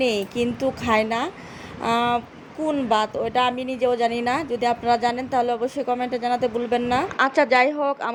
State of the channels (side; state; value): both; identical; correlation 1.00